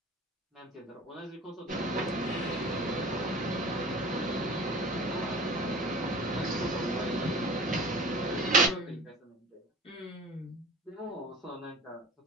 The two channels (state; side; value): normal; both; correlation 0.40